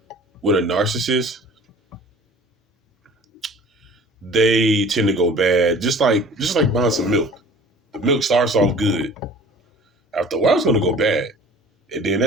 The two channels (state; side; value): normal; both; correlation 0.46